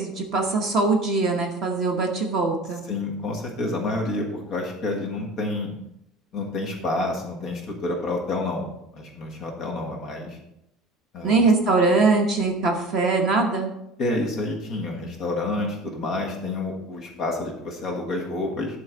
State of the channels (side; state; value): both; normal; correlation 0.39